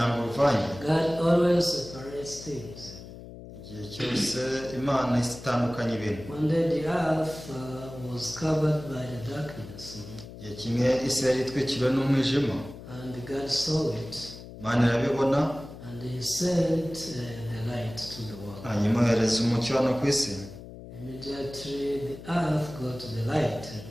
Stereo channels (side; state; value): left; noise; hum, 14 dB below the sound